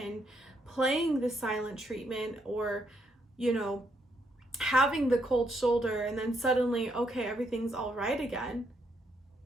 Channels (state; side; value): normal; both; correlation 0.75